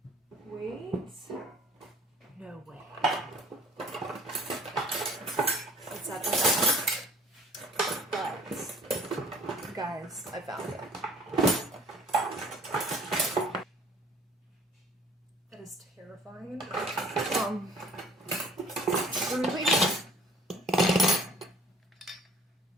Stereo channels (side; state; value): both; normal; correlation 0.53